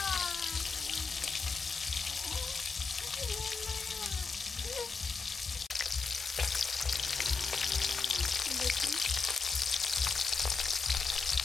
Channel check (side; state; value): right; quieter; 4.7 dB